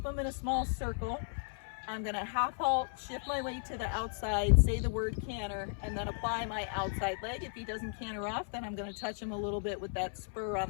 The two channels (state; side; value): silent; right; 54 dB below the other